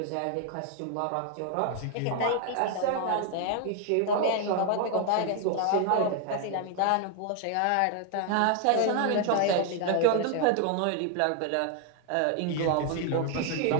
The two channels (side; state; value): both; different; correlation 0.00